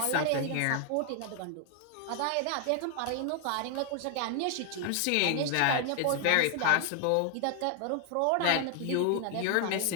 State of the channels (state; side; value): different; both; correlation 0.00